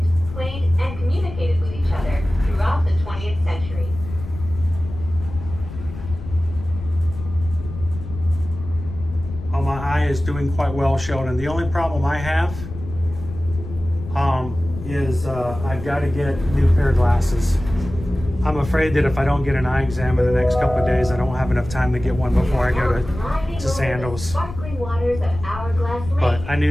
played, and communicated with each other throughout the 20th century. Oh, my eye is doing quite well, Sheldon. The only problem I have is I've got to get a new pair of glasses. I'm afraid that if I don't get an eye exam in the next couple of days, I don't have enough time to get one before I go to Sandals. But I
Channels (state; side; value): noise; left; rumble, 11 dB below the sound